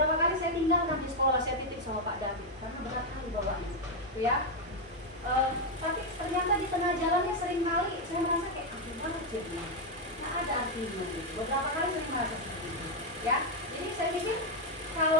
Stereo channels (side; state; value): both; normal; correlation 0.03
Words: kali saya tinggalkan di sekolah, saya titip sama Pak David karena berat kali bawanya gitu ya. Tapi ternyata di tengah jalannya sering kali saya merasa kayak banget jadi ada artinya gitu. Beberapa kali saya merasa seperti itu ya. Jadi saya pikir